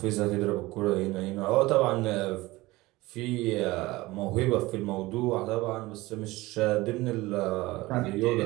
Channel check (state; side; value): quieter; left; 19.9 dB